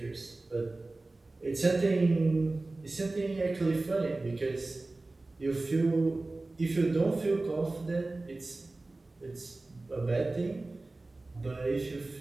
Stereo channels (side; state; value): left; quieter; 3.1 dB